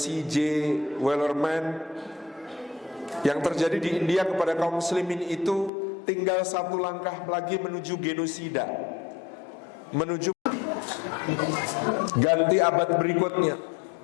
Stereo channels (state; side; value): drops out; right; at 5.7 s